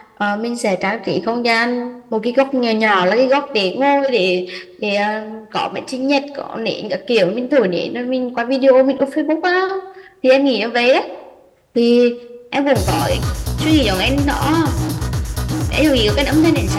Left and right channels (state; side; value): identical; both; correlation 1.00